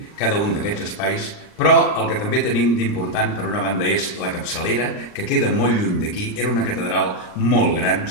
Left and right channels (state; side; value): late; right; 39 ms